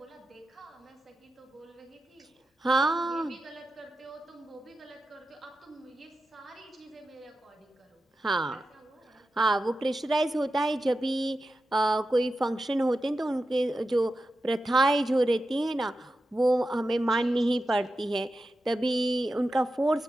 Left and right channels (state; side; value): normal; both; correlation 0.91